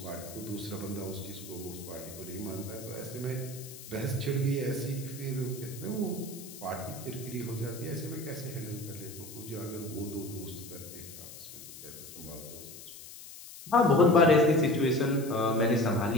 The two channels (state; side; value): noise; left; hiss, 15 dB below the sound